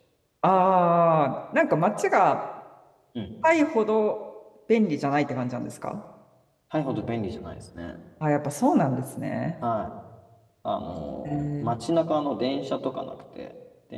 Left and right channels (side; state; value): both; identical; correlation 1.00